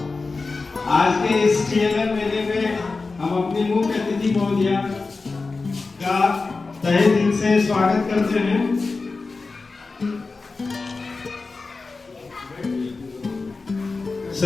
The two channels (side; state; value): right; quieter; 4.0 dB